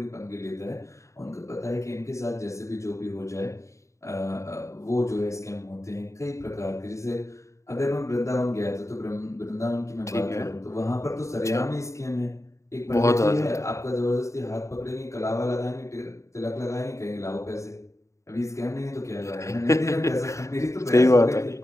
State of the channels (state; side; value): late; right; 0.14 ms